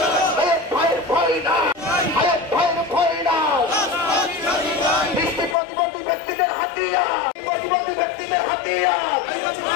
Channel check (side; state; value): right; drops out; at 5.6 s